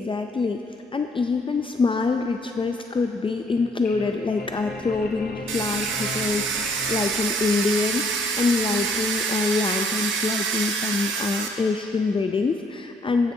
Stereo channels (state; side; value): normal; both; correlation 0.65